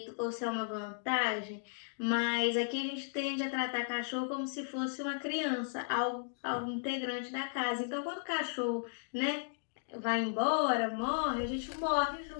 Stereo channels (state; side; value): silent; right; digital silence